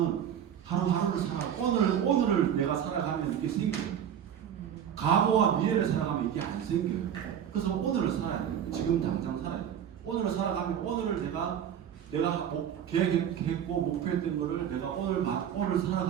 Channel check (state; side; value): quieter; left; 9.2 dB